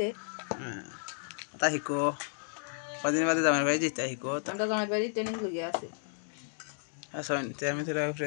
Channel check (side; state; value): right; silent; digital silence